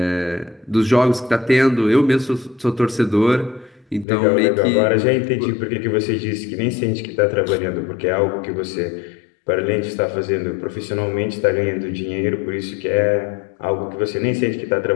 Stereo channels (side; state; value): right; drops out; at 4.0 s